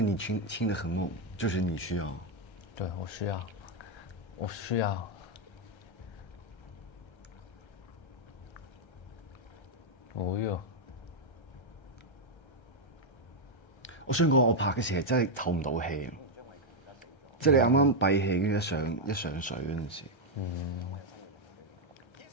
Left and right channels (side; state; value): right; late; 1.3 ms